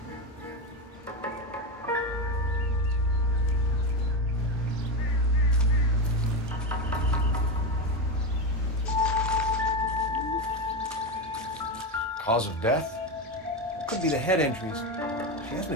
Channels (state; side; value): normal; both; correlation 0.15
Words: Cause of death? Could be the head injuries. She has